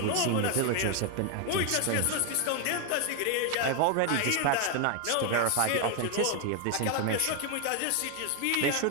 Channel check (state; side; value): different; both; correlation 0.01